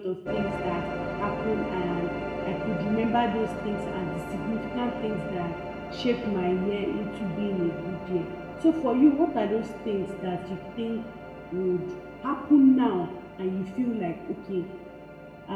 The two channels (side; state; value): both; identical; correlation 1.00